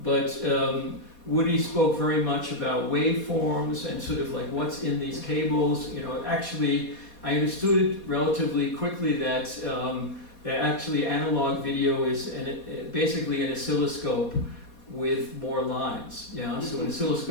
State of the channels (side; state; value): right; late; 4.2 ms